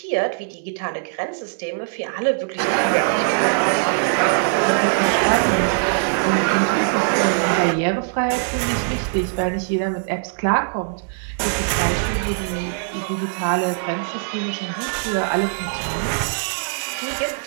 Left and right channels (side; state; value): left; silent; 65 dB below the other